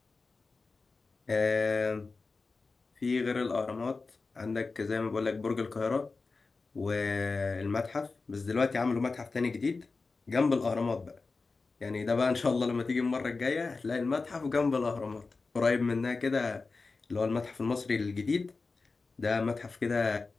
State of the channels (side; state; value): right; quieter; 4.0 dB